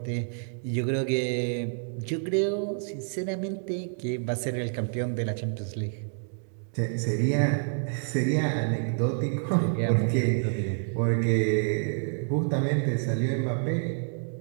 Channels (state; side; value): silent; left; 59 dB below the other